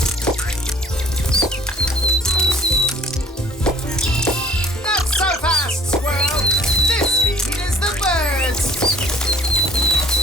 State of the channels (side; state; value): both; normal; correlation 0.55